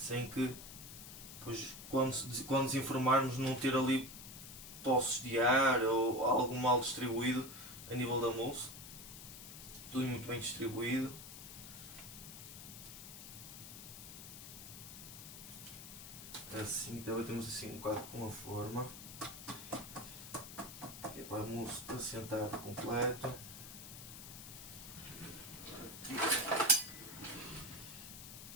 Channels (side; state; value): left; noise; hiss, 12 dB below the sound